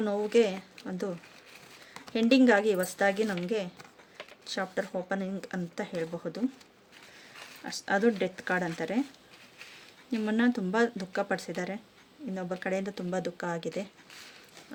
ನೋವಿಗೆ ಒಂದು ಎಂಡಿಂಗ್ ಆಗಿ ಹೊಸದಾಗಿ ನಮಗೆ ಚಾಪ್ಟರ್ ಓಪನಿಂಗ್ ಅಂತ ಹೇಳಬಹುದು. ಅದು ಡೆತ್ ಕಾರ್ಡ್ ಅಂತಾರೆ. ನಿಮ್ಮನ್ನು ತುಂಬ ದುಃಖಪಡಿಸಿದ್ದಾರೆ, ಇನ್ನೊಬ್ಬರ ಕಡೆಯಿಂದ ತುಂಬ ದುಃಖ ಆಗಿದೆ.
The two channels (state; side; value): identical; both; correlation 1.00